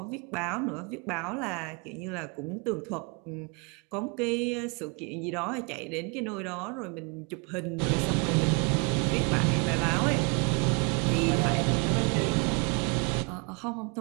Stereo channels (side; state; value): left; quieter; 33.0 dB